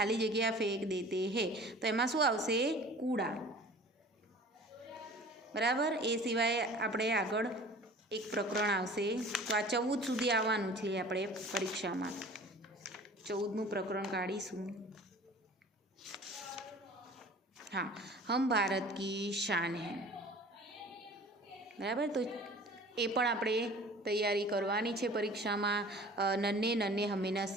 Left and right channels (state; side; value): normal; both; correlation 0.45